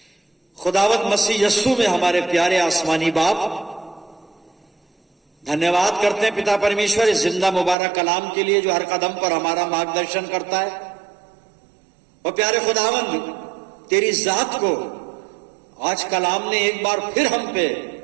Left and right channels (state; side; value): drops out; left; at 7.8 s